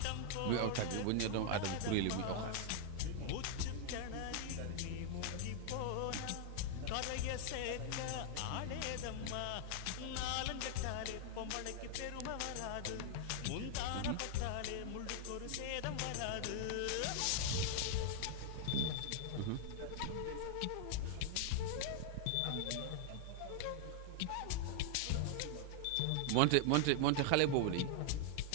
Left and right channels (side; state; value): both; different; correlation 0.00